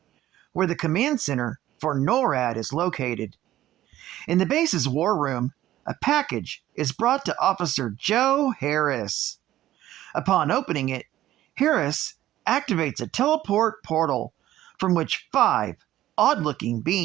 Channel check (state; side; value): quieter; left; 13.9 dB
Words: where the command center for NORAD is located. In the base's war room, a package is brought to Officer Joe Harris. Upon opening it, Harris activates a teleport portal from which 5 odd-looking